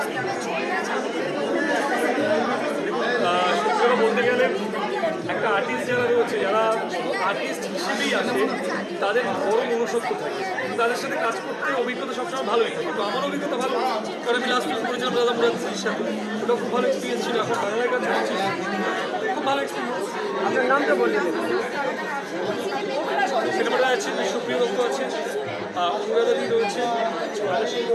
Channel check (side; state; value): both; identical; correlation 1.00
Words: সত্যি বলতে গেলে একটা আর্টিস্ট যারা রয়েছে, যারা আর্টিস্ট হিসেবেই আছে, তাদের বড় মনুষ্যত্ব থাকে, তাদের সাথে কাজ করতে অভিজ্ঞতা সবসময় ভালোই থাকে। তো আমার অভিজ্ঞতা ভালো, কারণ আমি লাস্ট ফিল্ম করেছিলাম দাদা মুরাদের সাথে, ওটা খুব ভালো এক্সপিরিয়েন্স ছিল। এখন বাংলার কাজ করছি, খুব ভালো এক্সপিরিয়েন্স। আপনার নামটা বললেন? সিনেমাটা আছে, সুপ্রিয় দত্ত আছে, অনুরাধাদি রয়েছে,